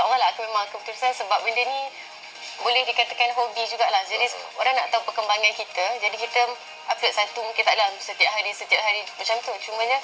lah akan memang keputusan, sebab benda ni boleh dikatakan hobi jugalah. Jadi orang nak tahu perkembangan kita, jadi kita upload satu, mungkin tak dalam setiap hari macam tu. Cumanya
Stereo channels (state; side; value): identical; both; correlation 1.00